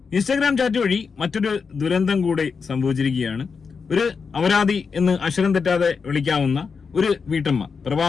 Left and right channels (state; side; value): quieter; right; 5.4 dB